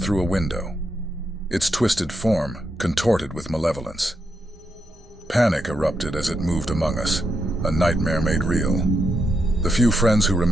through a window, its twisted form contorted with malevolence. Panic erupted as it moved among us, a nightmare made real. The few friends who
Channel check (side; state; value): both; normal; correlation 0.82